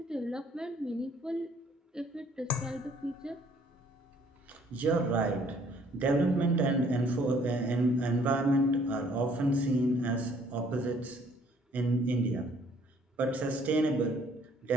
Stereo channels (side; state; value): both; normal; correlation 0.61